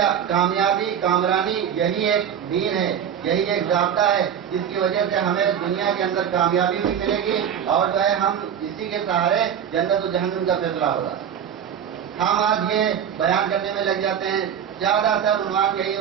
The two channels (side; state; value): left; quieter; 8.7 dB